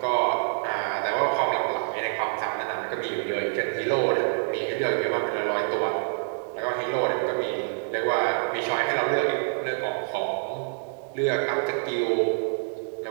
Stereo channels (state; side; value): silent; left; digital silence